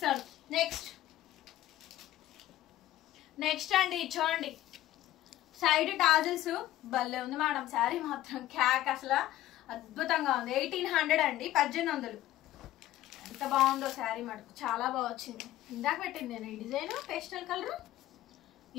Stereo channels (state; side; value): quieter; right; 14.5 dB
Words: నెక్స్ట్ అండి చూడండి, సైడ్ టాజిల్స్ భలే ఉంది మేడం. శారీ మాత్రం క్యాక్, అసలు అద్భుతంగా ఉంది. 1800 అండి, 1800. ఎంత బాగుందో శారీ మటుకు, చాలా బాగా వచ్చింది. ఇందాక పెట్టింది నేను ఈ డిజైన్ పేస్టల్ కలర్.